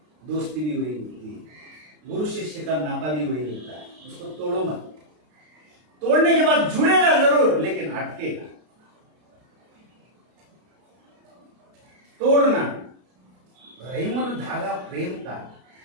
दोस्ती भी वही होती है, गुरु शिष्य का नाता भी वही होता है। उसको तोड़ो मत, तोड़ने के बाद जुड़ेगा जरूर, लेकिन अटकेगा। तोड़ना रहीमन धागा प्रेम का,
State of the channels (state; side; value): late; left; 33 ms